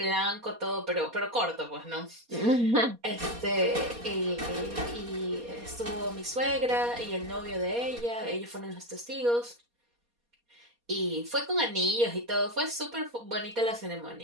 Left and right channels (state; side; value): late; left; 4.2 ms